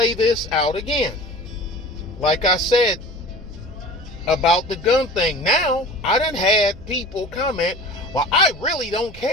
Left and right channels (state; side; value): noise; right; rumble, 19 dB below the sound